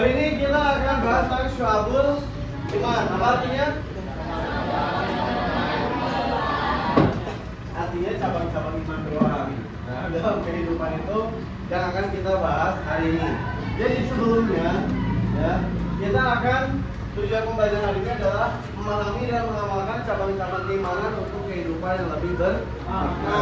ini kita akan bahas tentang Syu'abul Iman. Apa artinya? Artinya cabang-cabang iman doang. Nah, dalam kehidupan itu yang akan kita bahas hari ini. Jadi sebelumnya, ya, kita akan tujuan pembelajaran hari ini adalah memahami dan mengamalkan cabang-cabang keimanan untuk kehidupan yang lebih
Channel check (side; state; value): both; identical; correlation 1.00